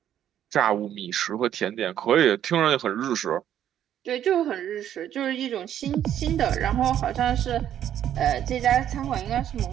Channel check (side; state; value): left; quieter; 10.6 dB